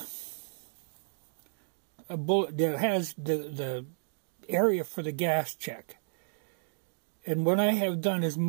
a bullet that has the area for the gas check. And what I have done is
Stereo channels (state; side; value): silent; left; digital silence